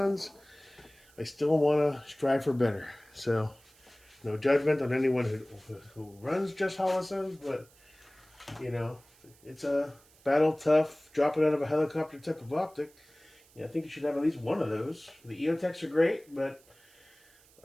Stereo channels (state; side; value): noise; right; hiss, 28 dB below the sound